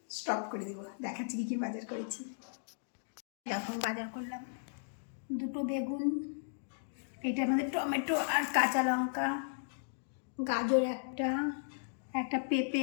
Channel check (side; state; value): right; silent; digital silence